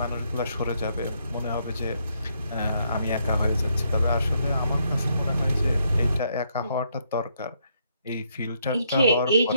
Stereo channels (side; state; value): both; inverted; correlation -0.74